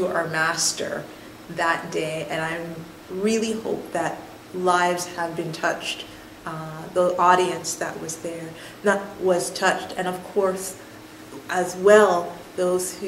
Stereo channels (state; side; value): identical; both; correlation 1.00